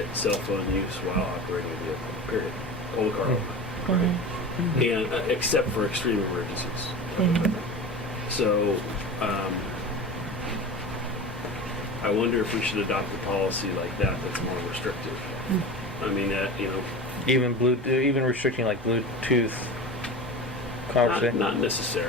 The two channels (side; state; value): both; normal; correlation 0.30